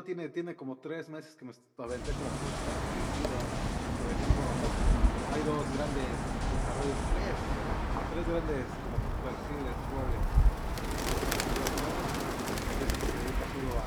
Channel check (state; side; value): identical; both; correlation 1.00